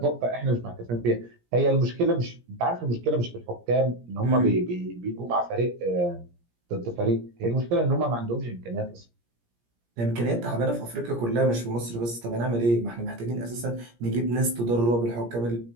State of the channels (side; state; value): left; late; 17 ms